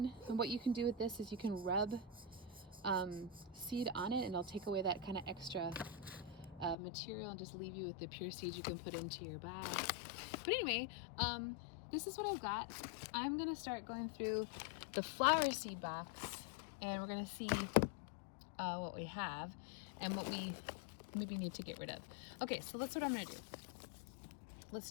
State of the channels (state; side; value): drops out; right; at 6.8 s